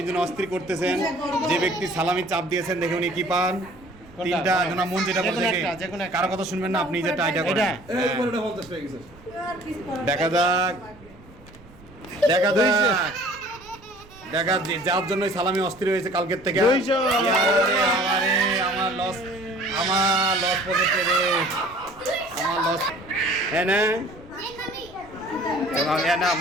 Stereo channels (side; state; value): right; noise; rumble, 23 dB below the sound